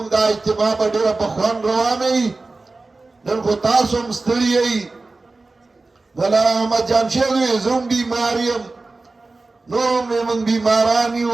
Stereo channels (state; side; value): quieter; left; 3.5 dB